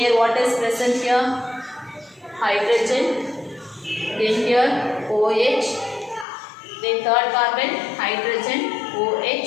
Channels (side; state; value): right; drops out; at 6.2 s